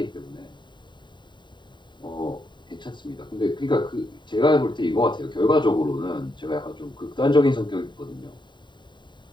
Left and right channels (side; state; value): right; late; 0.22 ms